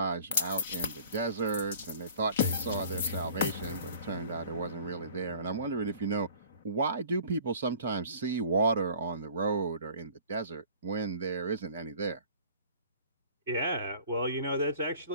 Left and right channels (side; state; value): both; inverted; correlation -0.48